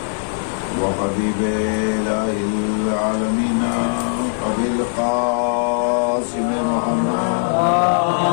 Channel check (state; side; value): silent; right; digital silence